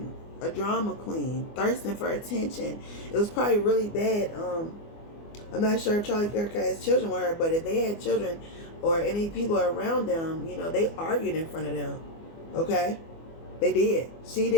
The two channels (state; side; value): late; right; 24 ms